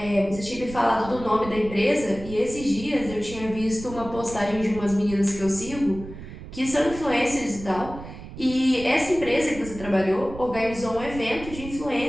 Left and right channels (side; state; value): right; noise; rumble, 13 dB below the sound